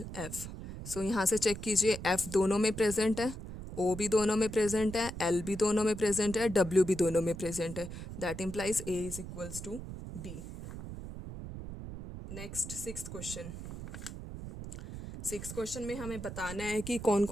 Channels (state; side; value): noise; right; rumble, 10 dB below the sound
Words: सो यहाँ से चेक कीजिए F दोनों में प्रेजेंट है ओ भी दोनों में प्रेजेंट है, एल भी दोनों में प्रेजेंट है, डब्ल्यू भी दोनों में प्रेजेंट है. That implies A is equals to B. Next sixth question. Six question में हमें बताना है कि कौन